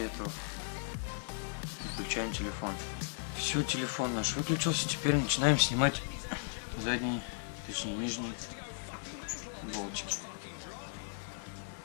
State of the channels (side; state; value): right; silent; digital silence